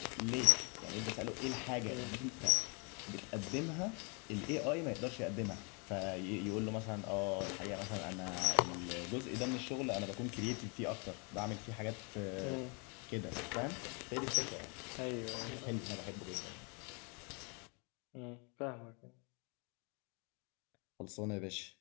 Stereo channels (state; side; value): quieter; right; 33.6 dB